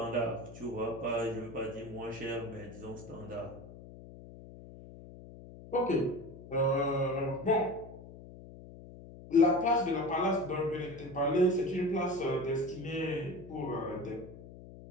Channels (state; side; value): noise; left; hum, 16 dB below the sound